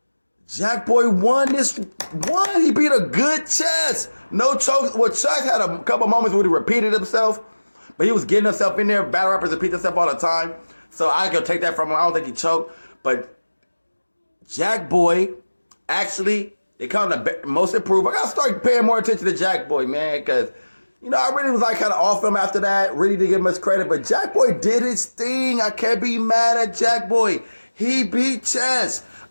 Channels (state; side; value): inverted; both; correlation -1.00